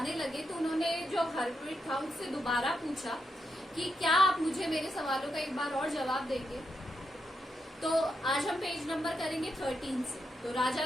लगे तो उन्होंने जो हर्मिट था उससे दोबारा पूछा कि क्या आप मुझे मेरे सवालों का एक बार और जवाब देंगे। तो आज हम पेज नंबर करेंगे 13 से। तो राजा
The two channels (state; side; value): normal; both; correlation 0.84